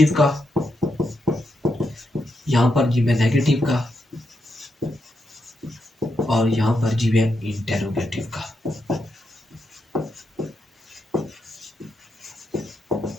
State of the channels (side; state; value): both; normal; correlation 0.83